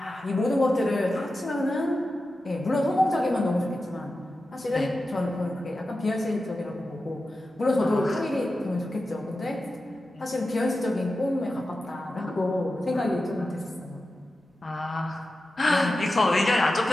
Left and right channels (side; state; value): both; normal; correlation 0.92